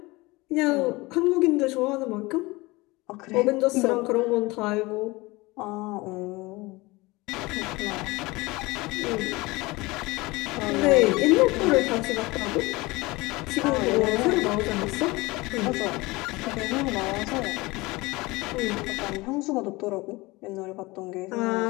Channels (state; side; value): quieter; right; 22.4 dB